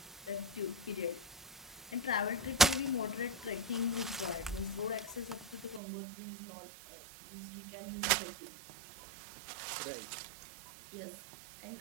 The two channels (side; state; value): left; drops out; at 5.8 s